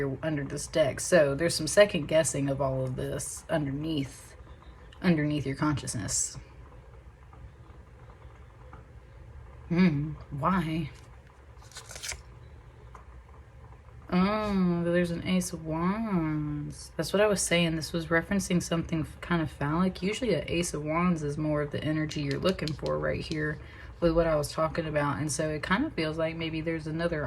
under this deck. So there's some second guessing of all of this underneath your consciousness. Why? Oh, there's an Ace of Wands. That's what I was saying. This was referencing something kind of phallic. Usually an Ace of Wands is more of the energy you're looking for right here with what I was talking about. And so it kind of feels like maybe there's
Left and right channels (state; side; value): identical; both; correlation 1.00